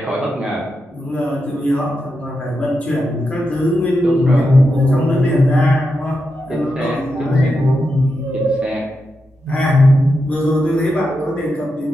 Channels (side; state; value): both; normal; correlation 0.87